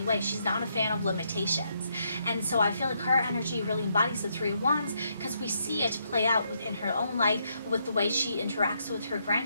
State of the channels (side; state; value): both; inverted; correlation -0.76